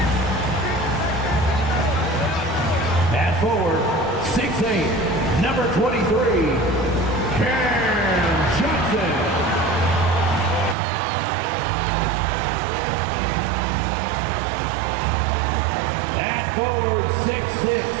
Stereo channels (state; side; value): drops out; left; at 10.8 s